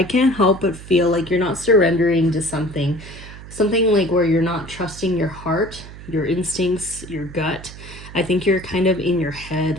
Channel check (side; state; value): right; noise; hum, 15 dB below the sound